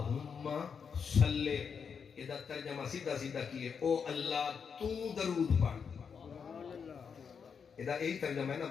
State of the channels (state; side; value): quieter; right; 6.4 dB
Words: صلی، ادھر ترجمہ سیدھا سیدھا کیے، او اللہ تو درود پڑھ. ادھر یہی ترجمہ ہے نا